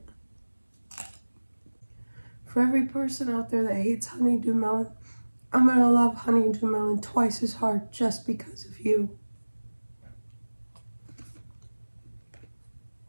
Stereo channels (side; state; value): both; inverted; correlation -1.00